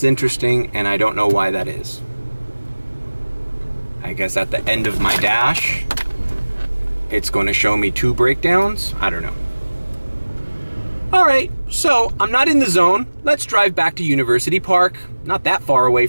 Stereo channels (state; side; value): inverted; both; correlation -1.00